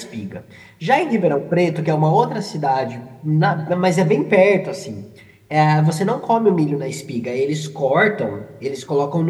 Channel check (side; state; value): both; identical; correlation 1.00